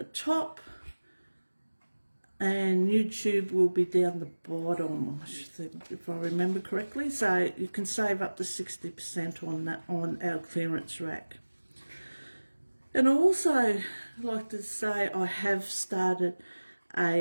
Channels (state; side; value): inverted; both; correlation -1.00